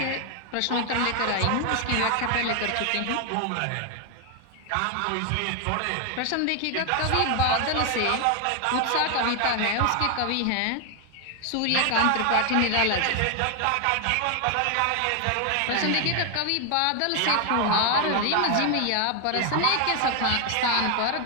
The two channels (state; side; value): different; both; correlation 0.00